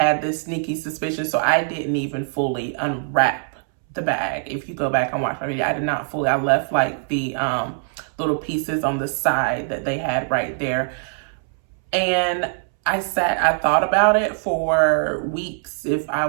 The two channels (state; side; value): silent; left; 64 dB below the other